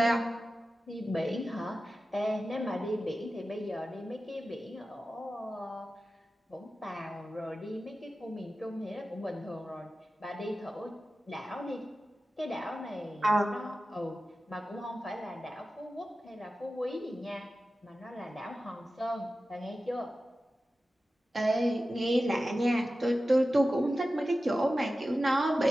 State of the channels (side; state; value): both; normal; correlation 0.94